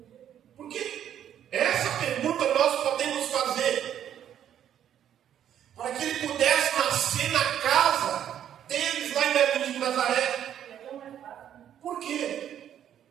Porque essa pergunta nós podemos fazer. Para que ele pudesse nascer na casa deles lá em Belém de Nazaré. Por quê?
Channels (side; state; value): left; quieter; 10.1 dB